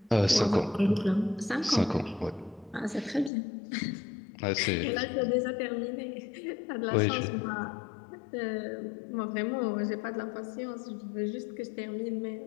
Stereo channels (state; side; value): drops out; right; at 3.3 s